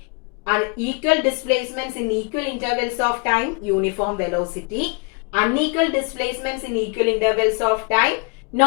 And equal displacements in equal intervals of time, uniform velocity. Unequal displacements in equal intervals of time,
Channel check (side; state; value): right; quieter; 35.1 dB